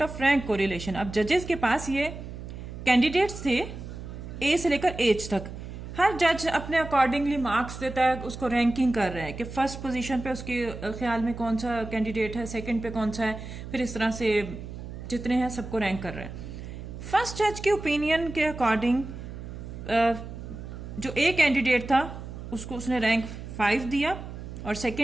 of rank correlation। अब जजेस के पास ये candidates थे A से लेकर H तक, हर जज अपने अकॉर्डिंगली मार्क्स देता है, उसको रैंकिंग कर रहा है कि फर्स्ट पोजीशन पे उसके ख्याल में कौन सा कैंडिडेट है, सेकंड पे कौन सा है, फिर इस तरह से जितने हैं सबको रैंक कर रहा है। फर्स्ट जज के ओपिनियन के अकॉर्डिंग जो ए कैंडिडेट था उसको उसने रैंक 5 दिया और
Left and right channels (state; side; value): noise; right; hum, 10 dB below the sound